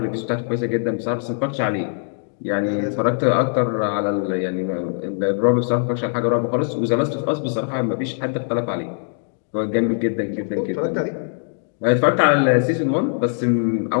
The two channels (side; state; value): right; silent; digital silence